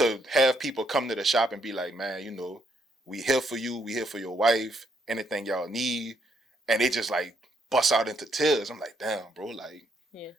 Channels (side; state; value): both; normal; correlation 0.73